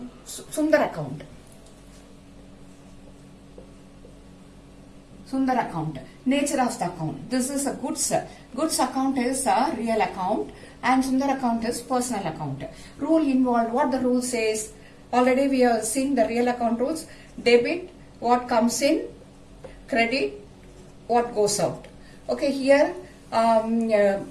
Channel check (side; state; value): both; identical; correlation 1.00